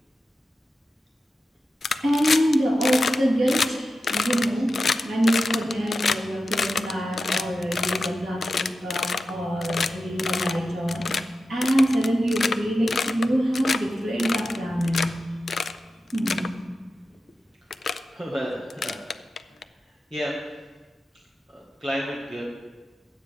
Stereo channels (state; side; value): normal; both; correlation 0.92